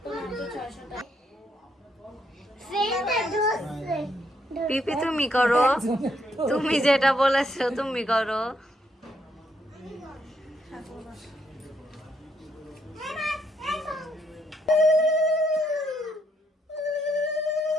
মাত্র 600 টাকা পিপি তুমি করো তুমি যেটা বলেছো তুমি করো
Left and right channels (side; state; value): both; normal; correlation 0.74